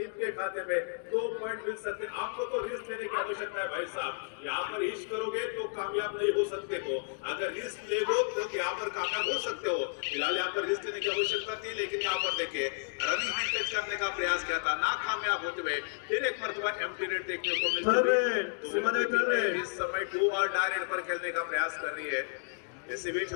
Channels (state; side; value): silent; right; digital silence